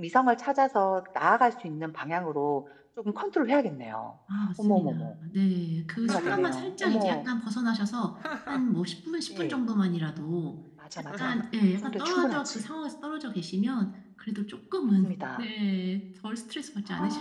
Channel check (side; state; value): both; identical; correlation 1.00